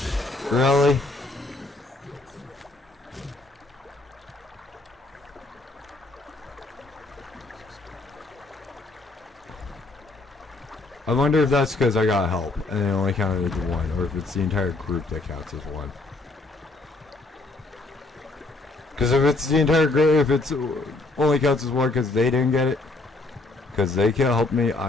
Really? I wonder if that's because I got help and it only counted as one, or if it's the entire group that counts as one. Because if it's the entire group, if it's only counts as one because they didn't get it, because they can't help me,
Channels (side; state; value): right; quieter; 3.2 dB